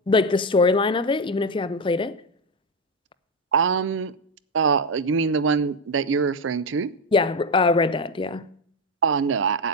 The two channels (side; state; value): both; normal; correlation 0.10